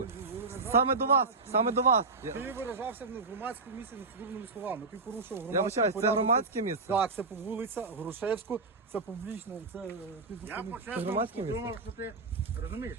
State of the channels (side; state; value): left; quieter; 3.9 dB